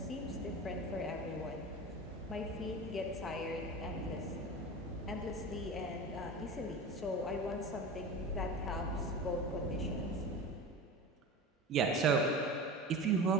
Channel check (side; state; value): both; normal; correlation 0.31